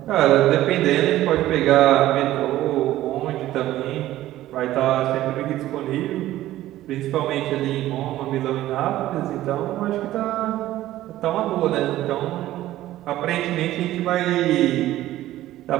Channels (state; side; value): quieter; left; 14.7 dB